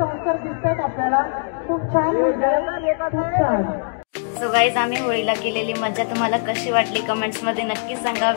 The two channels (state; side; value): silent; right; digital silence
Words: दिसतात आपल्याला. खूप छान. सो गाईज, आम्ही होळीला केलेली मजा तुम्हाला कशी वाटली कमेंट्स मध्ये नक्की सांगा.